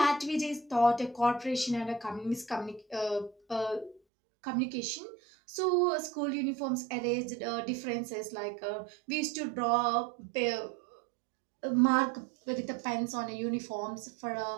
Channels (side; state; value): left; drops out; at 4.0 s